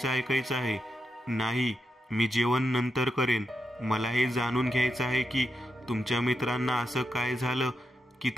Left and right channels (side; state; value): both; normal; correlation 0.85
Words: ऐकायचं आहे. नाही, मी जेवण नंतर करेन. मला हे जाणून घ्यायचं आहे की तुमच्या मित्रांना असं काय झालं की